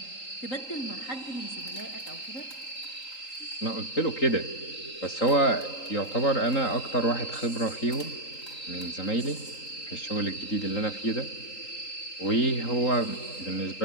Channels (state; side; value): late; right; 3.8 ms